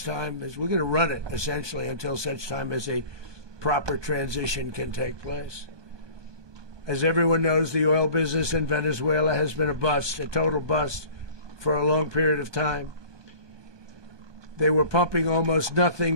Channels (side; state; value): left; late; 1.2 ms